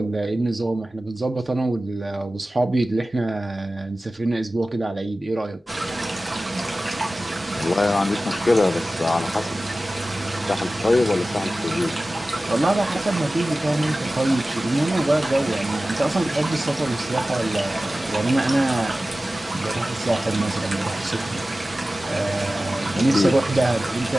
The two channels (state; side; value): normal; both; correlation 0.96